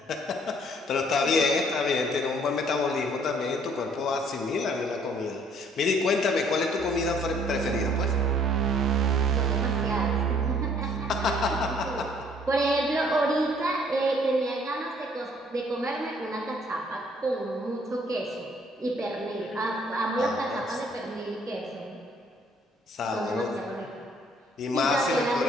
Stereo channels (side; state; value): both; normal; correlation 0.61